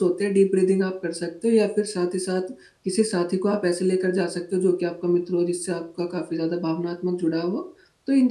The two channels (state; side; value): identical; both; correlation 1.00